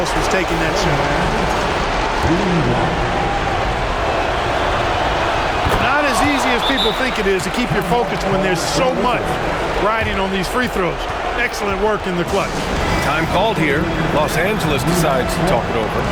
was taking that shot. Not as easy as people think it is to keep your focus when there's so much riding on these free throws. Excellent work in the clutch. Time called here. Los Angeles decides to talk it over.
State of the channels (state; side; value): identical; both; correlation 1.00